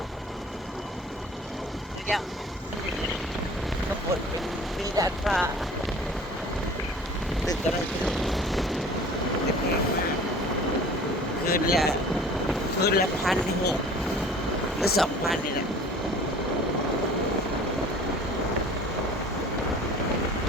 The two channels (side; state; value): both; normal; correlation 0.46